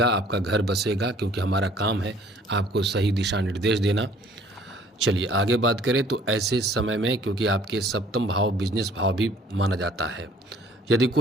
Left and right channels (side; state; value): both; normal; correlation 0.56